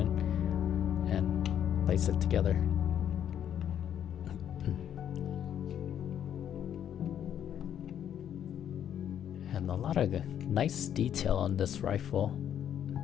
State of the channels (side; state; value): right; quieter; 9.7 dB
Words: and place it together. And a lot of nice detail on this rifle.